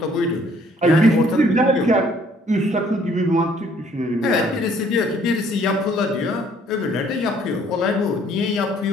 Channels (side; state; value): both; normal; correlation 0.62